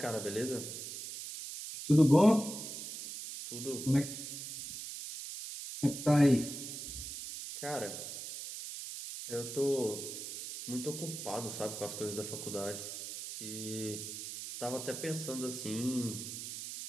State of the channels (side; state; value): right; noise; hiss, 8 dB below the sound